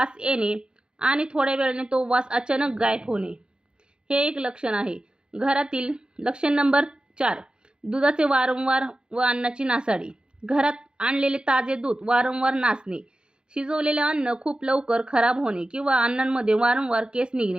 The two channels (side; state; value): left; late; 0.049 ms